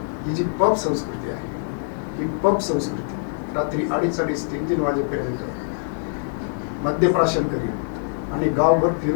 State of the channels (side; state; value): right; silent; digital silence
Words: ही जी पब संस्कृती आहे, ही पब संस्कृती रात्री 2:30, 3-3 वाजेपर्यंत मद्यप्राशन करीत आणि गावभर